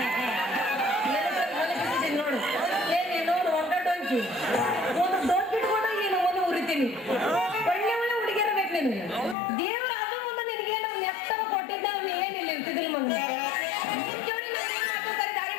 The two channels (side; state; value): right; drops out; at 9.3 s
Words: ನೋಡು. ನೋಡು ಒಗ್ಗಟ್ಟೊಂಚಿ ಒಂದು ದೊಡ್ಡ ಬಿಟ್ಕೊಂಡು ನೀನು ಒಂದು ಉರಿತೀನಿ. ಒಳ್ಳೆ ಒಳ್ಳೆ ಹುಡುಗಿಯರ ಬೇಕು ನಿನಗೆ. ದೇವ್ರ ಅದು ಒಂದು ನಿನಗೆ ನಮ್ಮ ನೆತ್ತನ ಕೊಟ್ಟಿದ್ದ ಏನಿಲ್ಲ ಇರ್ತಿದ್ದಿಲ್ಲ ಮಗ.